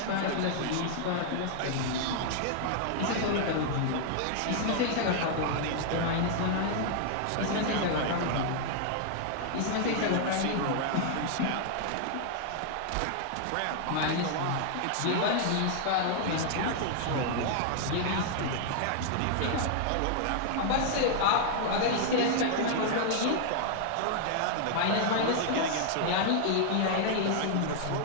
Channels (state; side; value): different; both; correlation -0.01